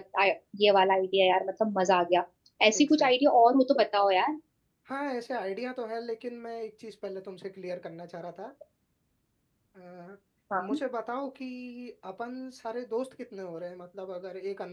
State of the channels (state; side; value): identical; both; correlation 1.00